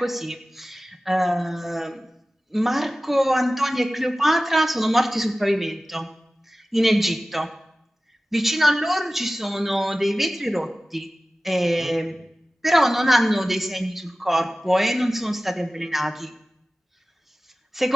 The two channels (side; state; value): both; normal; correlation 0.96